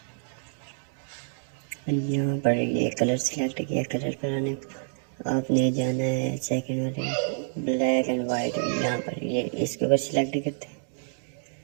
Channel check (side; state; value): left; silent; digital silence